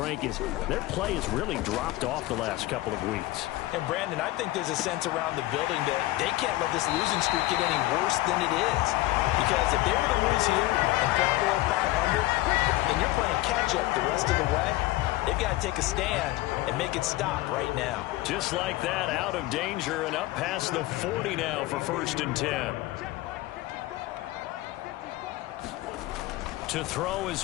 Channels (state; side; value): quieter; right; 18.0 dB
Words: their play has really dropped off the last couple of weeks. And, Brandon, I think there's a sense around the building that they can't let this losing streak get any worse than it is. Because if they were to lose here and fall below 500, then you're playing catch-up the rest of the way. They've got to take a stand and make it stop right now. Just like that, out of danger and up past the 40 now for 1st and 10. To throw